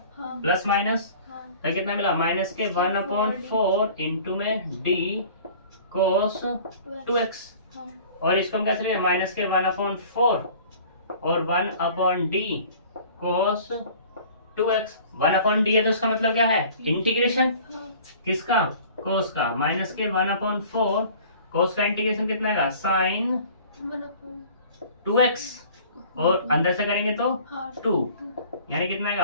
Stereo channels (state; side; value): inverted; both; correlation -0.47